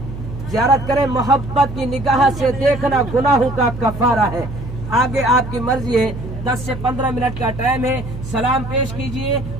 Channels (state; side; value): noise; right; hum, 10 dB below the sound